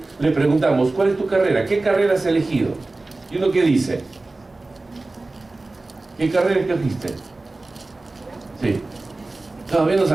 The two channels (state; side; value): quieter; left; 3.2 dB